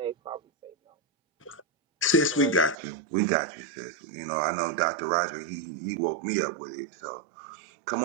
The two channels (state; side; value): drops out; left; at 2.8 s